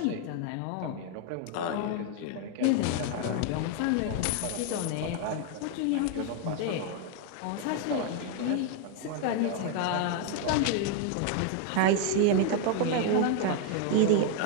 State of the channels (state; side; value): different; both; correlation 0.00